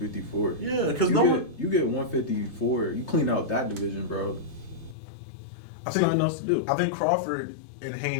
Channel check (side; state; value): right; drops out; at 5.0 s